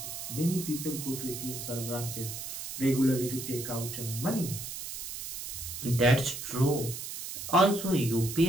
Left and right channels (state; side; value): noise; right; hiss, 7 dB below the sound